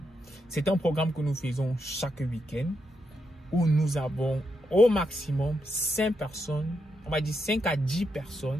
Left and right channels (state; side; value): normal; both; correlation 0.82